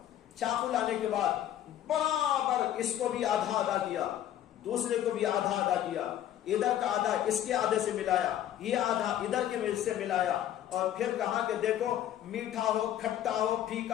چاقو لانے کے بعد برابر اس کو بھی آدھا آدھا کیا، دوسرے کو بھی آدھا آدھا کیا، ادھر کا آدھا اس کے آدھے سے ملایا، یہ آدھا ادھر کے سے ملایا، اور پھر کہا کہ دیکھو میٹھا ہو کھٹا ہو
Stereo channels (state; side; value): quieter; right; 11.6 dB